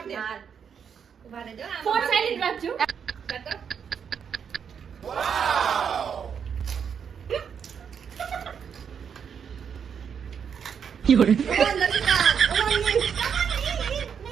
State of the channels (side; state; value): left; quieter; 7.3 dB